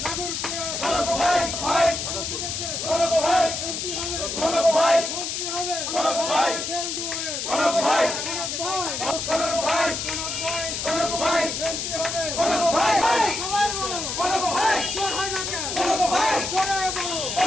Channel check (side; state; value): left; noise; hiss, 3 dB below the sound